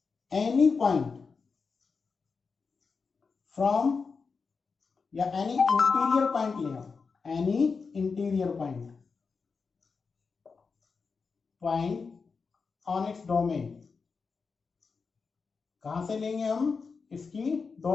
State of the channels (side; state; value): right; quieter; 5.0 dB